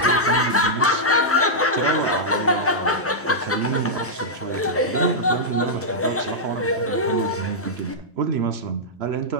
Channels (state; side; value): normal; both; correlation -0.08